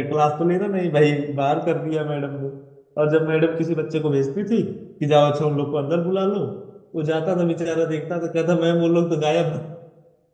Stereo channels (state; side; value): identical; both; correlation 1.00